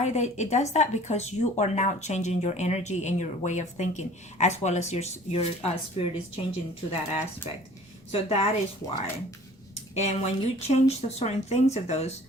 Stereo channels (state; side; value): normal; both; correlation 0.49